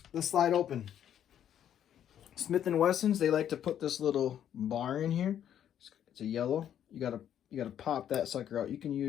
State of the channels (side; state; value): right; quieter; 10.0 dB